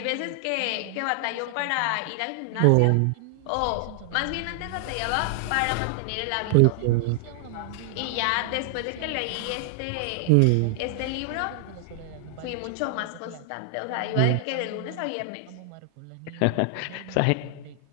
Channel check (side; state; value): both; different; correlation 0.00